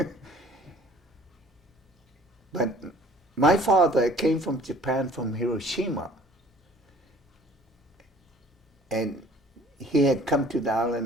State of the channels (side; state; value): both; normal; correlation 0.53